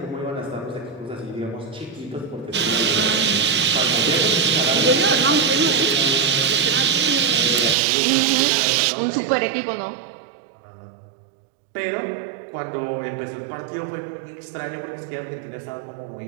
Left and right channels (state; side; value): drops out; left; at 7.8 s